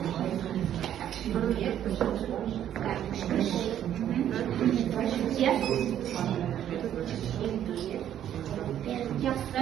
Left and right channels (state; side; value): quieter; left; 10.7 dB